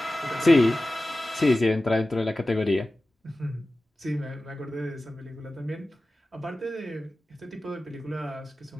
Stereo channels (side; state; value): both; normal; correlation 0.95